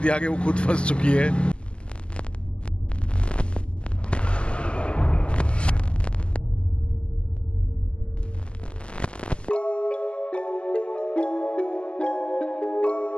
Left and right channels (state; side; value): late; right; 0.052 ms